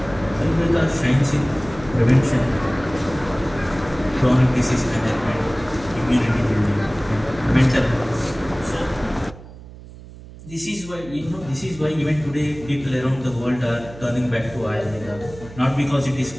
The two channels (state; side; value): noise; right; hum, 17 dB below the sound